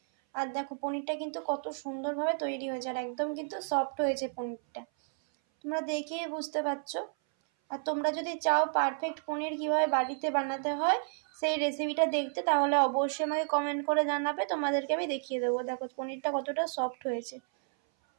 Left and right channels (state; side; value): silent; left; 57 dB below the other